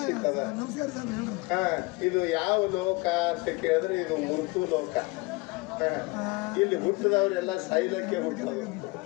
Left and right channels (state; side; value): quieter; right; 24.9 dB